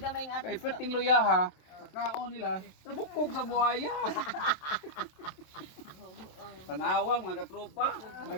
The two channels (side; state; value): right; late; 27 ms